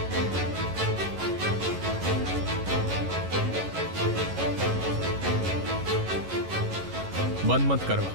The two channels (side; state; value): left; late; 11 ms